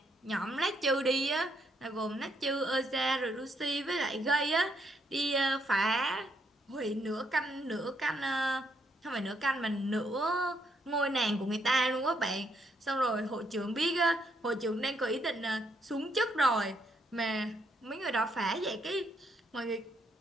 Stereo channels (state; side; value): normal; both; correlation 0.74